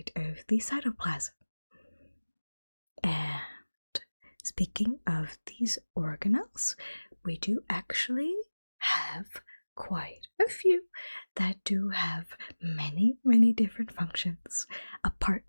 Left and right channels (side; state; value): both; inverted; correlation -1.00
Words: of the cytoplasm. And speaking of these organelles, we do actually have quite a few that do have many, many different functions, apart